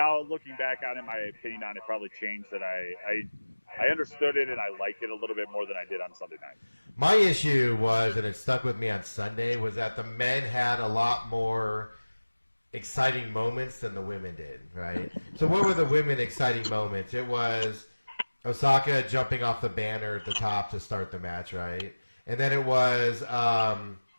looking back on it, my opinion on it probably changed. That I understood it and I liked it a little bit more than I did on Sunday night. My issue was, and it stuck with me on Sunday, was that the men had a lot more exciting moments than the women did, right? So what were the women exciting moments? It was Osaka jumping off the banner at the top to start the match, right? And then it was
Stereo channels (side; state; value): both; inverted; correlation -1.00